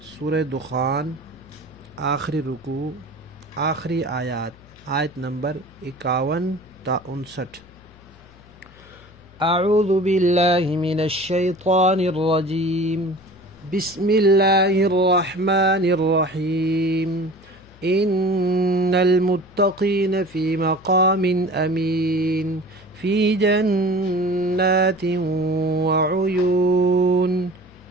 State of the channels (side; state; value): left; noise; hum, 25 dB below the sound